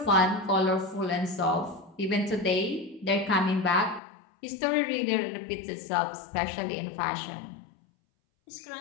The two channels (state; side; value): drops out; right; at 4.0 s